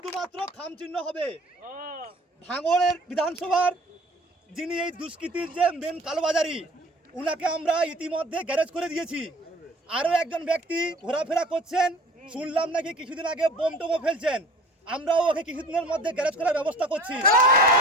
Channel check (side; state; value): both; normal; correlation 0.45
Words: খাম চিহ্ন হবে। ভাঙড়ের বিধানসভার যিনি এই দুষ্কৃতির যে মেন কালোবাজারি, উনাকে আমরা ইতিমধ্যে গ্যারেজ করে দিয়েছি। আরও একজন ব্যক্তি ঘোরাফেরা করছেন, শুনলাম নাকি কিছুদিন আগে বোম টোমও ফেলছেন। আমরাও ওকে কিছুদিনের মধ্যে গ্যারেজ করার ব্যবস্থা করছি।